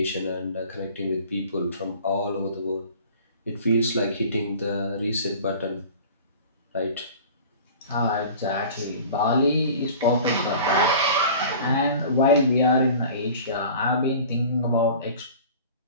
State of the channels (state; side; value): inverted; both; correlation -0.42